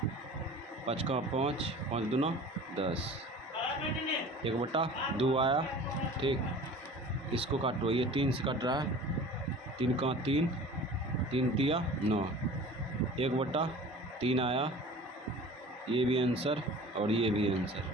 5 का 5, 5 दूना 10, 1/2 आया। ठीक, इसको काटो। ये 3 से कट रहा है, 3 का 3, 3 तिया 9, 1/3 आया। ये भी आंसर और ये भी आंसर।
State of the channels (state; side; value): normal; both; correlation 0.41